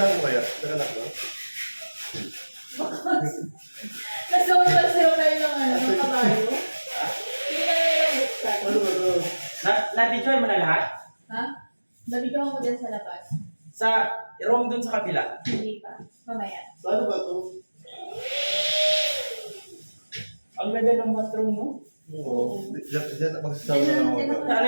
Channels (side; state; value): both; inverted; correlation -1.00